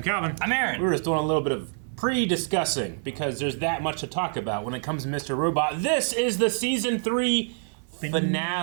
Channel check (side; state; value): left; silent; 61 dB below the other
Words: Calvin. I'm Aaron. We were just doing a little bit of pre-discussing because there's that much to talk about when it comes to Mr. Robot. This is the season 3